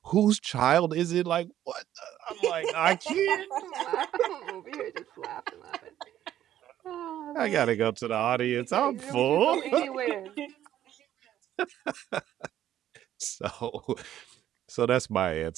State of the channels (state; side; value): quieter; left; 11.9 dB